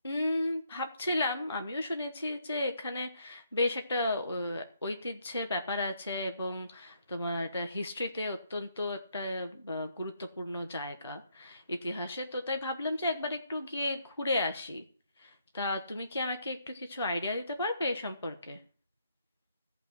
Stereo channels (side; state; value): both; inverted; correlation -0.73